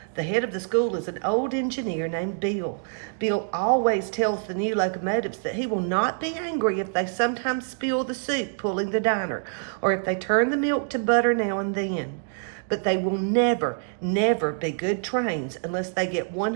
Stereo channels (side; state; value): left; silent; digital silence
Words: The head of the school is an old engineer named Bill. Bill always tells the new locomotives that he will not be angry if they sometimes spill the soup pulling the diner, or if they turn the milk to butter now and then. But they will never, never be good trains unless they get